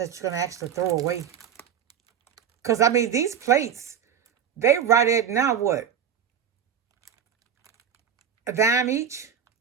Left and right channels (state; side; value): quieter; left; 8.3 dB